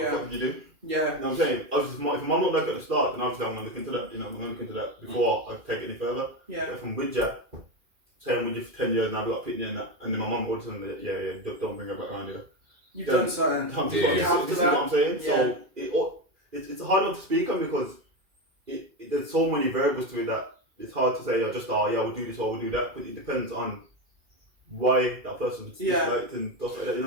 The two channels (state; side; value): late; left; 2.4 ms